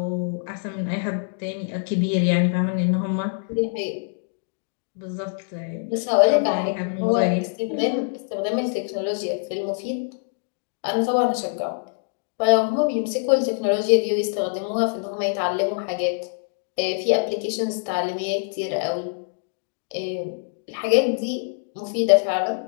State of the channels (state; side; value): silent; right; digital silence